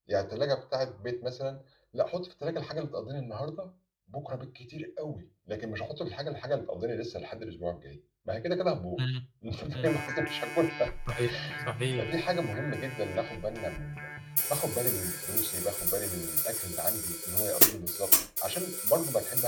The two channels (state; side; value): identical; both; correlation 1.00